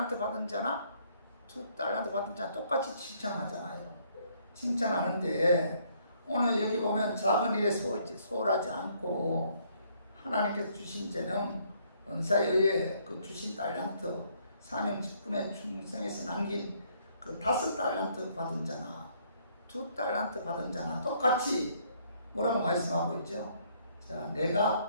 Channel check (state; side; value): inverted; both; correlation -0.67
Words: 받은 자나 2달란트 받은 자나 똑같이 칭찬하잖아요. 칭찬하는데 오늘 여기 보면 작은 일에 소홀하지 않고 하나님께서 주신 재능, 은사에 의해 그 주신 달란트, 사명 직분에 충성해서 남긴 그 5달란트 받은 자나 2달란트 받은 자나 똑같이 뭐라고 말씀하고 있죠? 자,